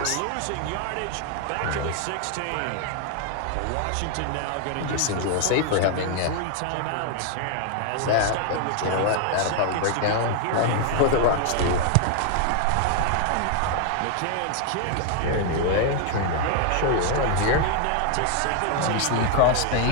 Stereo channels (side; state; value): both; different; correlation 0.00